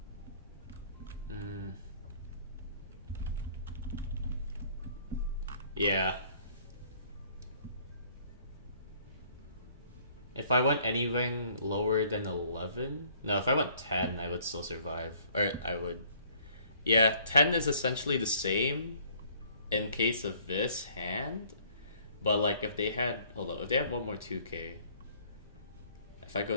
Yeah. If I went anything lower than 11... No, if I went 10, I would still survive. Or I would... Yeah, 10 is essentially the same in case of this hand. But like if they had... Hold up, if they have one more 2K... If I go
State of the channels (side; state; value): both; inverted; correlation -0.59